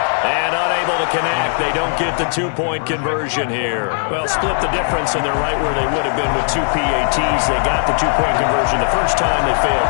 And unable to connect. They don't get the two-point conversion here. Well, split the difference, and they're right where they would have been with two PATs. They got the two-point conversion the first time. They failed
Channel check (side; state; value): right; silent; 68 dB below the other